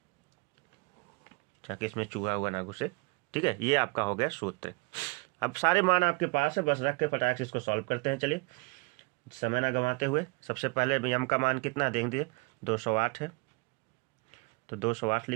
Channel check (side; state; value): left; quieter; 28.8 dB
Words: ताकि इसमें चूहा हुआ ना घुसे, ठीक है। ये आपका हो गया सूत्र। अब सारे मान आपके पास है, बस रख के फटाक से इसको सॉल्व करते हैं। चलिए समय ना गंवाते हुए, सबसे पहले m का मान कितना देख दीजिए, 208 है, तो 208